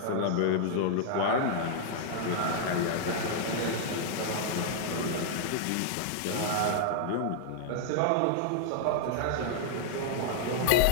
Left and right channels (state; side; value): different; both; correlation -0.01